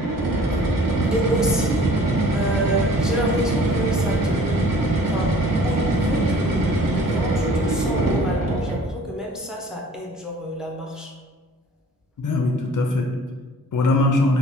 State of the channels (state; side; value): normal; both; correlation 0.50